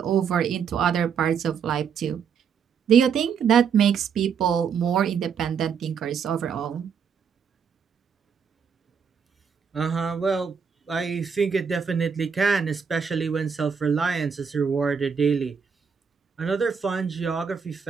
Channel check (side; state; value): left; quieter; 6.7 dB